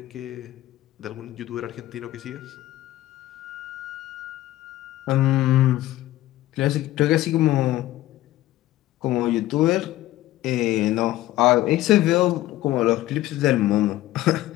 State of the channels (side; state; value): right; quieter; 15.5 dB